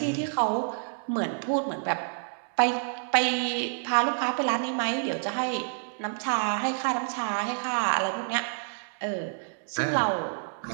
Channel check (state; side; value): silent; left; digital silence